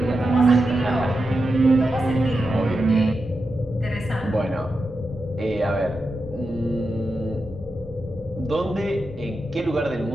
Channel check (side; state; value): both; normal; correlation 0.89